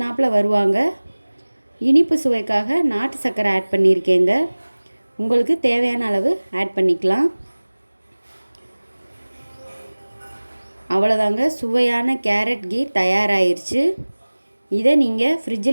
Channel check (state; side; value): inverted; both; correlation -1.00